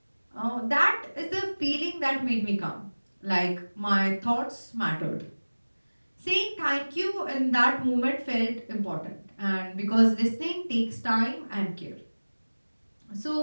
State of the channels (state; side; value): inverted; both; correlation -1.00